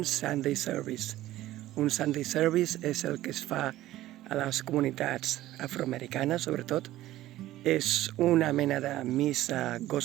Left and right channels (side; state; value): left; quieter; 15.1 dB